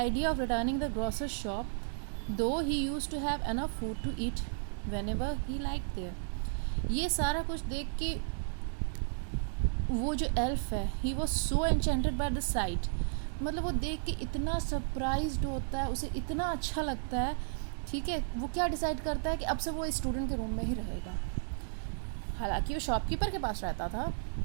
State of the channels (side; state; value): left; silent; digital silence